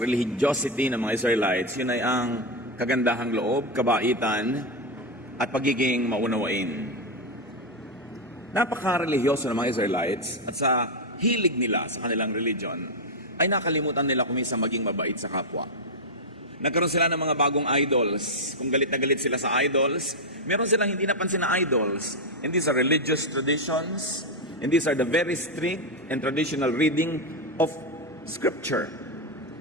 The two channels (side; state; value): both; normal; correlation 0.04